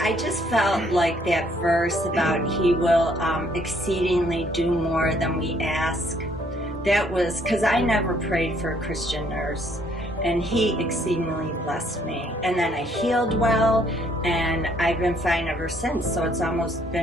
I just felt like that verse about He will exceedingly do more than we ask. That was because I never prayed for a Christian nurse, and He exceedingly blessed me. And then I healed well, and I've been fine ever since, so it's almost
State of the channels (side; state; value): both; normal; correlation 0.65